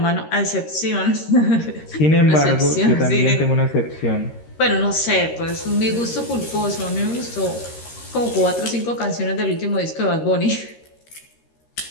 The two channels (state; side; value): late; right; 13 ms